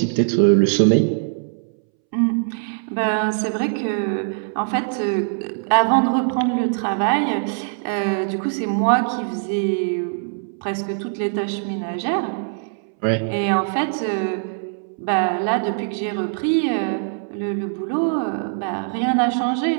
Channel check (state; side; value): silent; left; 64 dB below the other